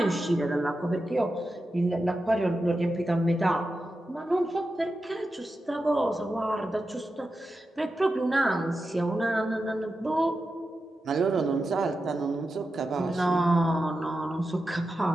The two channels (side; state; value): both; normal; correlation 0.90